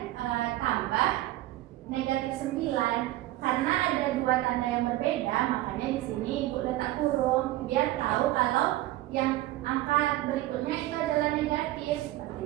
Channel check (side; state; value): left; quieter; 16.2 dB